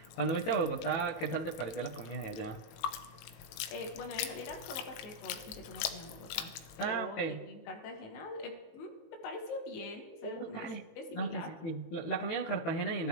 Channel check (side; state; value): right; late; 19 ms